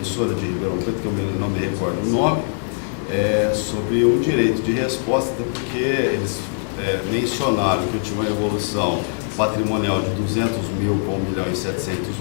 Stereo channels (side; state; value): right; silent; digital silence